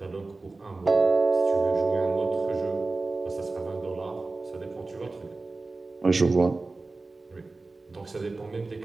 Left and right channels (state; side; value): quieter; left; 3.5 dB